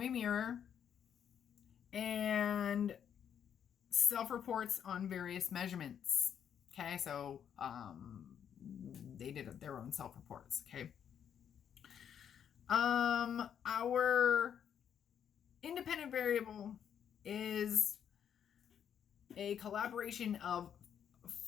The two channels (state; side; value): quieter; right; 8.6 dB